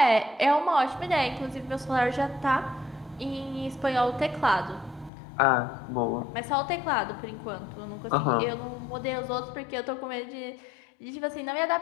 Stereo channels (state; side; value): drops out; right; at 5.1 s